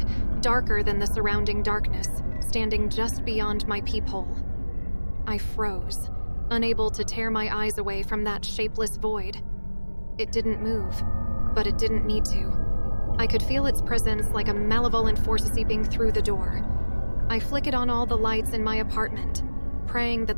darker than the surrounding darkness, standing just beyond my peephole. I froze, unable to tear my eyes away from that shapeless void. It didn't move, but it didn't need to. I could feel its presence like a malevolent force seeping through the door. I flickered on all the lights in my apartment, praying that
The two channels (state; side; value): inverted; both; correlation -1.00